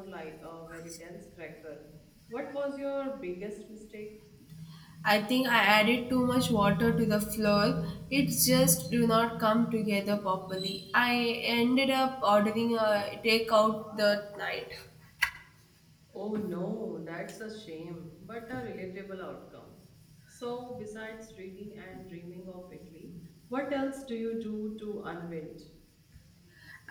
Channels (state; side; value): identical; both; correlation 1.00